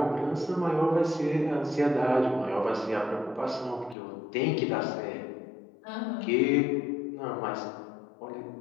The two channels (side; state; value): right; drops out; at 4.0 s